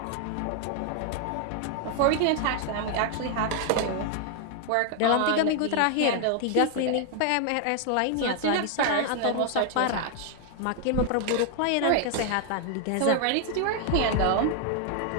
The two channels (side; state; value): both; different; correlation 0.00